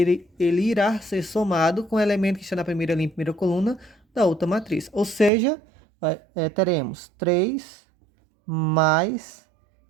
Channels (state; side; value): drops out; left; at 5.3 s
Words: irá ser somado com o elemento que está na primeira linha e primeira coluna da outra matriz. Ou seja, teremos 3 mais